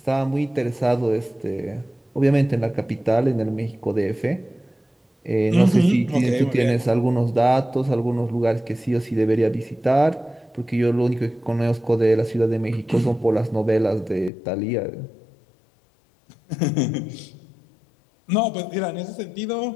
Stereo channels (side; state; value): right; drops out; at 14.3 s